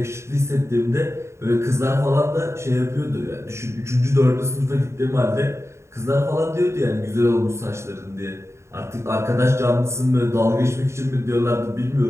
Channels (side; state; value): left; late; 0.13 ms